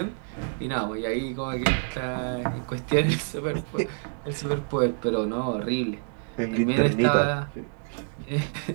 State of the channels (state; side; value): silent; left; digital silence